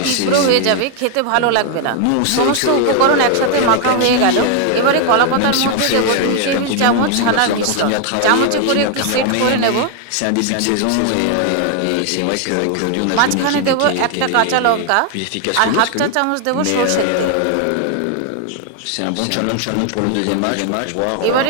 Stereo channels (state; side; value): different; both; correlation 0.00